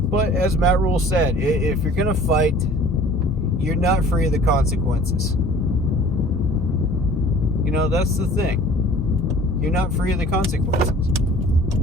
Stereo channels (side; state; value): both; normal; correlation 0.49